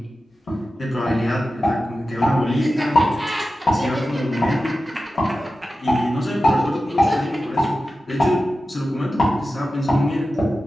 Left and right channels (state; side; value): normal; both; correlation 0.93